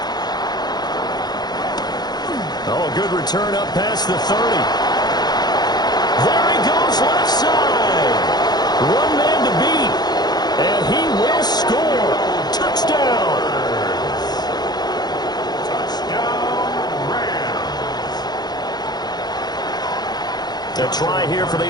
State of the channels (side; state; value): right; late; 0.20 ms